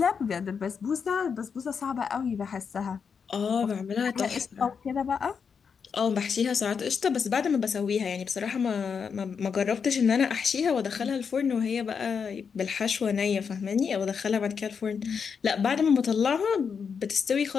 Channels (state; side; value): quieter; right; 6.3 dB